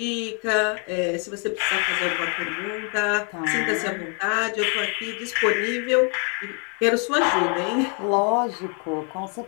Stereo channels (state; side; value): quieter; right; 38.3 dB